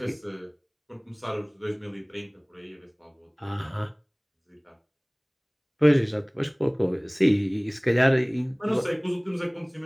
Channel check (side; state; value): both; identical; correlation 1.00